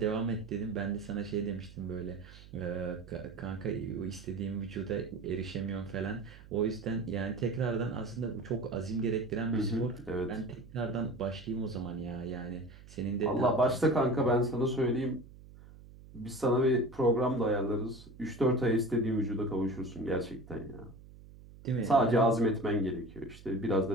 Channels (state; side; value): noise; right; hum, 19 dB below the sound